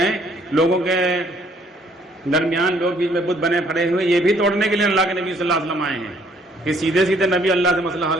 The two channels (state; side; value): normal; both; correlation 0.63